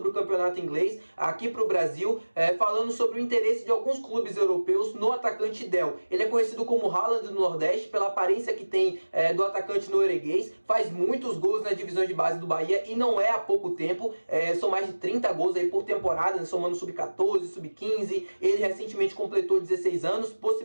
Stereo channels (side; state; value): both; inverted; correlation -1.00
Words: o campeonato inglês aqui para o Brasil, falando sobre o interesse de alguns clubes europeus no atacante Del. Ele é conhecido como Haaland do Nordeste pela aparência que tem do atacante norueguês, faz muitos gols na divisão de base do Bahia e não é há pouco tempo, são mais de 30 gols aí por temporada, somando sub-14, sub-15. Ele recentemente completou 16 anos,